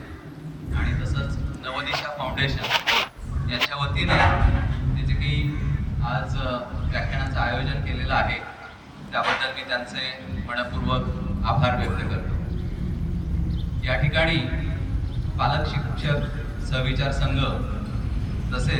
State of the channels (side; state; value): both; identical; correlation 1.00